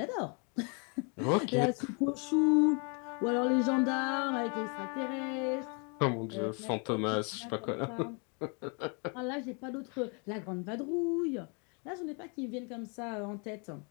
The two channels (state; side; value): quieter; right; 35.4 dB